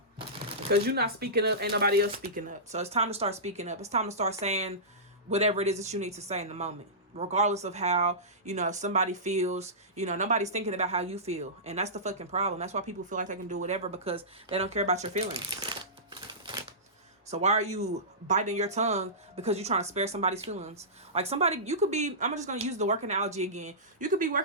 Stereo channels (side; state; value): both; normal; correlation -0.19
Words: because you're not speaking up, ain't nobody else speaking up. So it's time to start speaking up. It's time to start saying whatever it is that you need to say in the moment. Regardless of how, somebody feels, nobody's thinking about how you feel. And that's the fucking problem. That's why people feel like they can do whatever, because they don't care about your feelings. So why are you biting your tongue because you're trying to spare somebody's feelings? Like, somebody, you could be, I'm just going to use the work analogy again. You could be